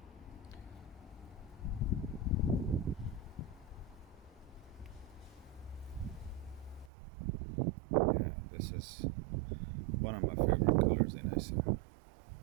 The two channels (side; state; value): left; drops out; at 6.9 s